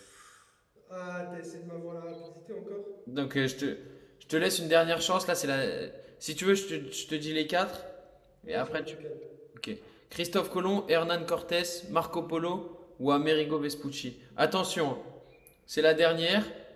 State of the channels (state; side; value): identical; both; correlation 1.00